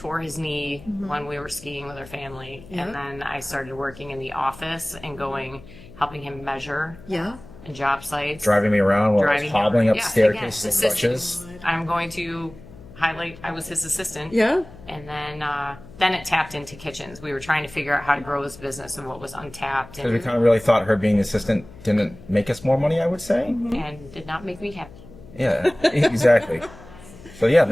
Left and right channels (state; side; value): noise; left; hum, 19 dB below the sound